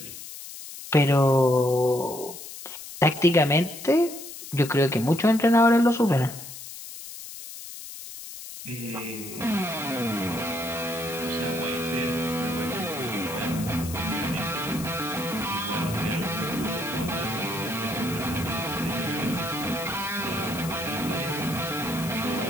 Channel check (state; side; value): noise; left; hiss, 12 dB below the sound